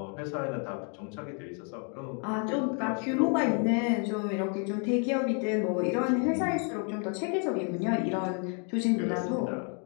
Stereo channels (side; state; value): right; quieter; 39.5 dB